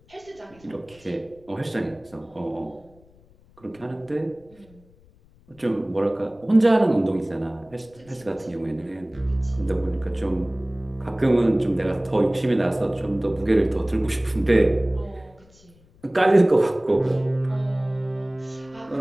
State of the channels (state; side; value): noise; left; rumble, 28 dB below the sound